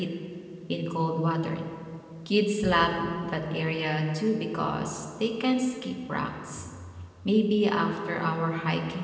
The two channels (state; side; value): identical; both; correlation 1.00